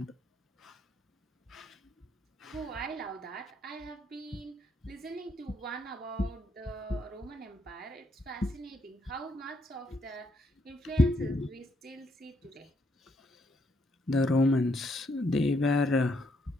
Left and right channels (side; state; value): both; normal; correlation 0.74